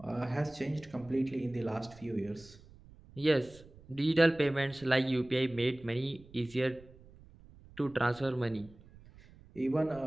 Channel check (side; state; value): right; noise; rumble, 22 dB below the sound